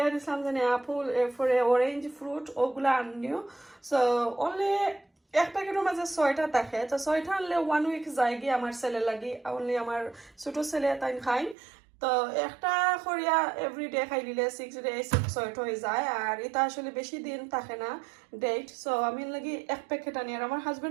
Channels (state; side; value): drops out; left; at 11.6 s